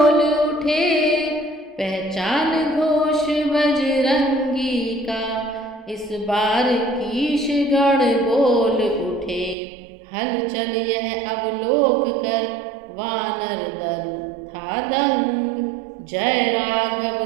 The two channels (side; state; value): left; drops out; at 9.6 s